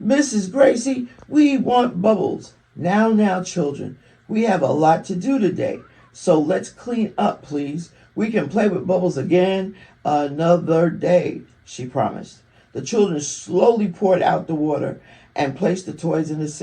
Mrs. Gracie, we want bubbles." Now, children, we have a lot to do today. So let's clean up, please. We can play with bubbles again another day, she promised. The children slowly poured out the water and placed the toys in the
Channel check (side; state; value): both; identical; correlation 1.00